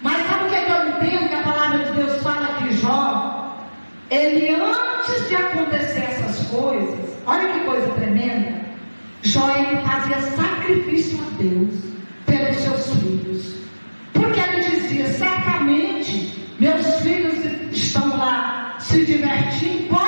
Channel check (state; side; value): inverted; both; correlation -1.00